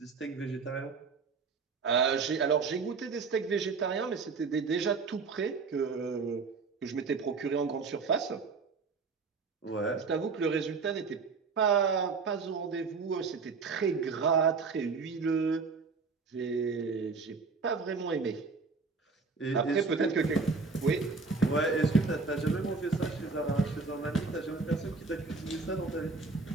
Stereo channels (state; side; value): quieter; left; 4.5 dB